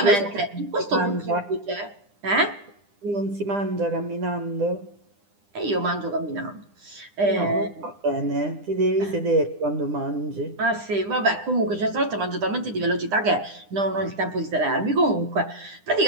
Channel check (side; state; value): left; late; 9.9 ms